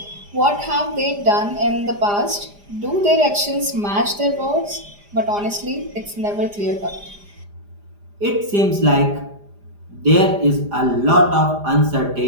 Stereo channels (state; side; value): late; left; 4.9 ms